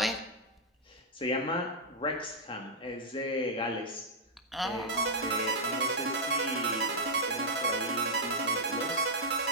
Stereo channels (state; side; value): normal; both; correlation -0.06